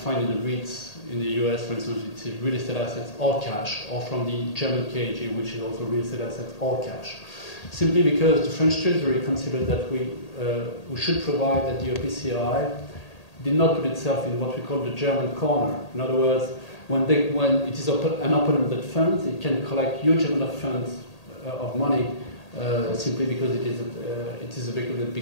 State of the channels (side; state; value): right; late; 1.8 ms